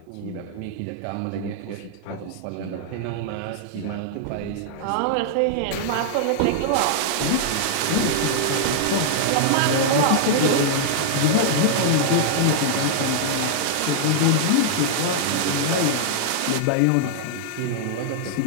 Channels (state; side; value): different; both; correlation -0.01